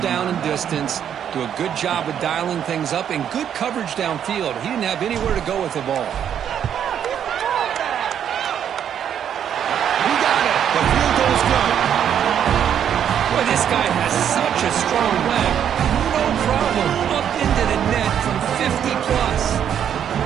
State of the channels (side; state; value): left; quieter; 9.1 dB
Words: and distance. Do a good job of dialing things up and good coverage downfield. He didn't have anywhere to go with the ball. He got it. The field goal is good. Boy, this guy has such a strong leg. No problem. Up into the net from 50 plus.